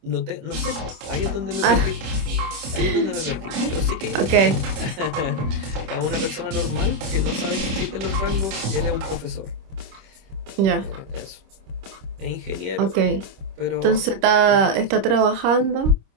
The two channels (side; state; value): left; late; 26 ms